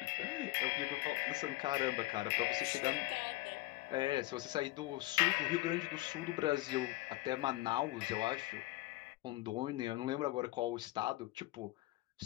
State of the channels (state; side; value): quieter; right; 19.1 dB